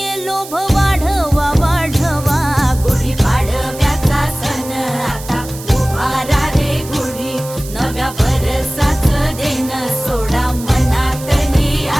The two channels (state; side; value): noise; right; hiss, 14 dB below the sound